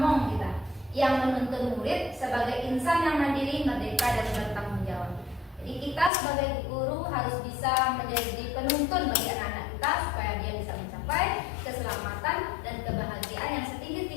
kita yang menuntun murid sebagai insan yang mandiri, merdeka dan bertanggung jawab. Jadi kita sebagai guru harus bisa menjadi penuntun bagi anak-anak kita supaya dia bisa mencapai keselamatan dan kebahagiaan yang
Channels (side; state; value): right; drops out; at 6.1 s